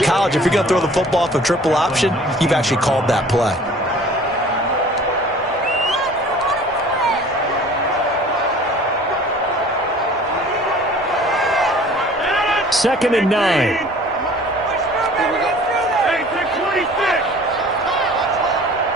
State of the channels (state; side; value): normal; both; correlation 0.48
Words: college, if you're going to throw the football off a triple option, you've actually called that play. Second and 9.